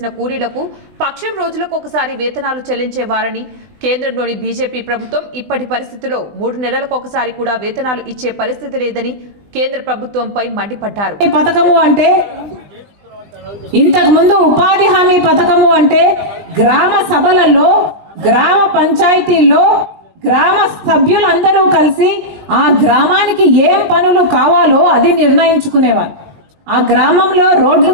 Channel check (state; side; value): late; left; 20 ms